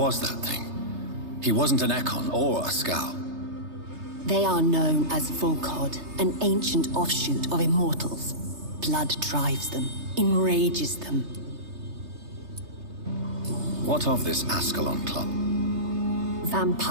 that thing? He wasn't an Ekon or a Skal. They are known as Volkod, an ancient offshoot of immortals. Blood drives them, enrages them. What of this Ascalon Club?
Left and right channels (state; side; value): late; left; 3.3 ms